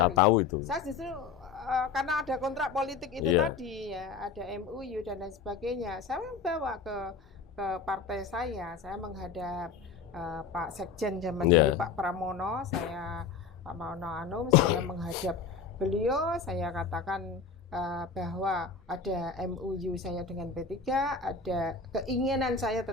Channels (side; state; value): right; quieter; 5.3 dB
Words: Saya tahu itu. Saya justru karena ada kontrak politik itu tadi ya, ada MUU dan lain sebagainya. Saya bawa ke partai saya menghadap Pak Sekjen zaman dulu Pak Pramono, Pak Maono Anum, saya menghadap beliau, saya katakan bahwa ada MUU saya dengan P3, ada keinginan saya